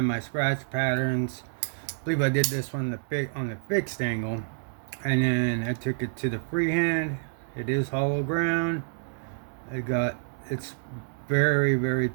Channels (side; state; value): left; silent; 59 dB below the other